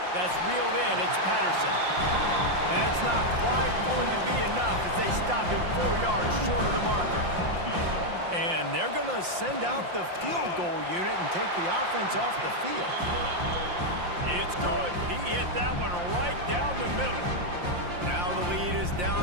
That's reeled in, it's Patterson. That's not quite going to be enough as they stop him 4 yards short of the marker. And they're going to send out the field goal unit and take the offense off the field. It's good. He hit that one right down the middle. Now the lead is down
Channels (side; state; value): left; late; 5.7 ms